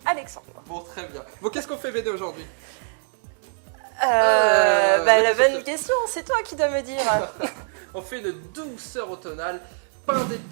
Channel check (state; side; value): silent; left; 63 dB below the other